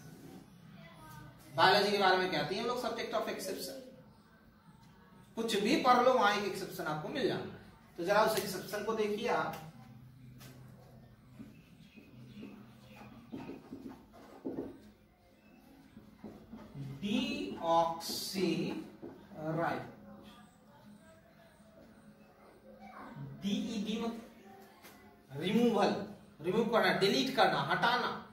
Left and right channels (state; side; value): identical; both; correlation 1.00